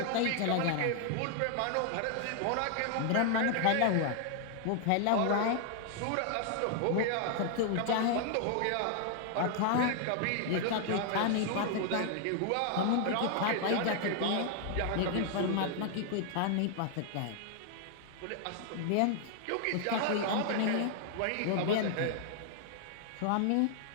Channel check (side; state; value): both; different; correlation 0.00